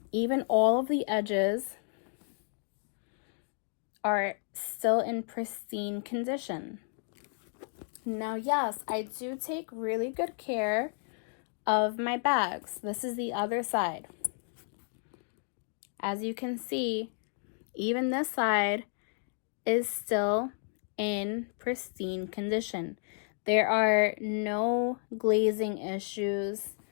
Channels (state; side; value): silent; right; 56 dB below the other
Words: even all of the edges are still in pristine condition. Now, yes, I do take really good care of my bags. This is the other side. As you can see, even this side is still in pristine condition. There are no glazing issues.